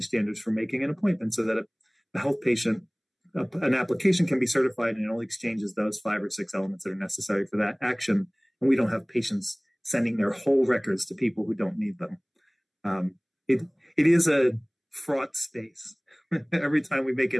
standards for making an appointment so that a health patient, an application can be certified and it only exchanges those 5 or 6 elements that are necessary for that action, and we don't have patients sending their whole records to people who don't need them. It is a fraught space. Every time we make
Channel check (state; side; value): identical; both; correlation 1.00